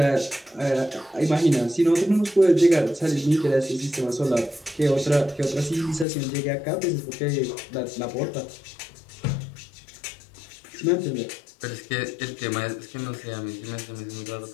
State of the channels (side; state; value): right; drops out; at 6.1 s